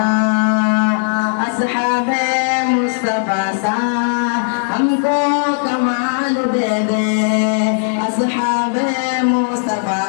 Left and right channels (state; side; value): silent; right; 63 dB below the other